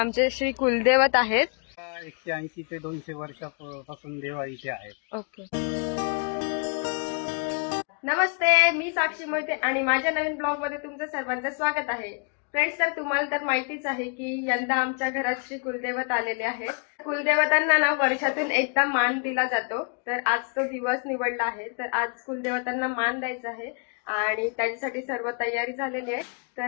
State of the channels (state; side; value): quieter; right; 39.7 dB